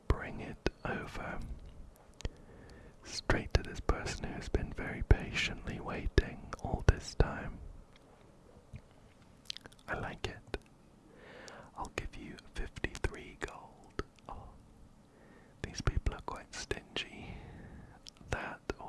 bring it over straight to this person who has been very patiently waiting all this time. I like it. I'll give you 53 gold. Oh, these people are quite stingy. That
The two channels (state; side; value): identical; both; correlation 1.00